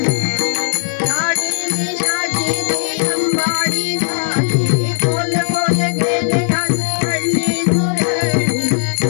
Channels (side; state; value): right; silent; digital silence